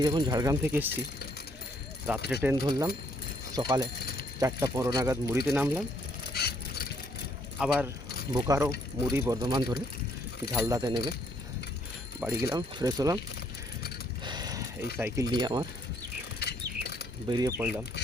যখন ঝাড়গ্রাম থেকে এসেছি, রাত্রে ট্রেন ধরলাম, সকালে 4:15 নাগাদ মুড়িতে নামলাম, আবার বোকারো মুড়ি বর্ধমান ধরে ঝালদাতে নেমে বাড়ি গেলাম, ফ্রেশ হলাম, এই সাইকেল নিয়ে আমার বেরিয়ে পড়লাম।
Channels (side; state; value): both; normal; correlation 0.68